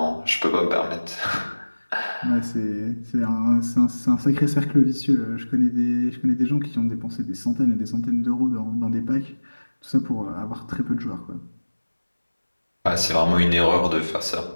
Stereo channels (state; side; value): inverted; both; correlation -1.00